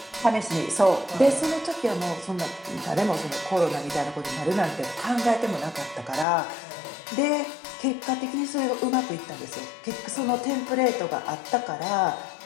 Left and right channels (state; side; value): drops out; right; at 6.2 s